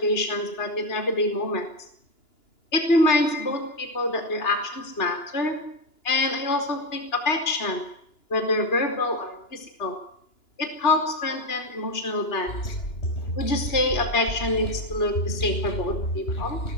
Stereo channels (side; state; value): right; late; 2.9 ms